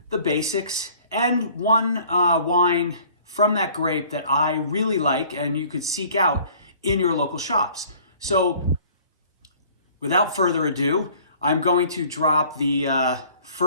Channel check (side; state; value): both; inverted; correlation -0.53